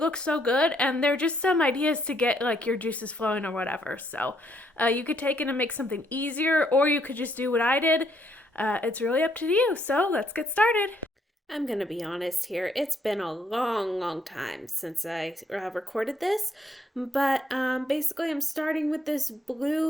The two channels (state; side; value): normal; both; correlation 0.71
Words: so good and they're just some ideas to get like your juices flowing or whatever. So you could take it and make something easier, or you could just do what I did. It's really up to you. So let's get started. I'm gonna be honest here. It's been a long time since I recorded this, but basically I'm starting with this